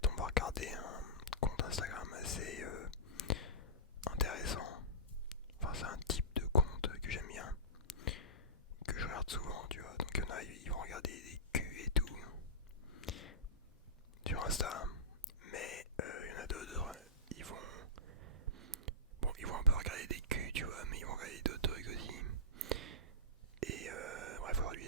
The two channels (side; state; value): both; normal; correlation -0.19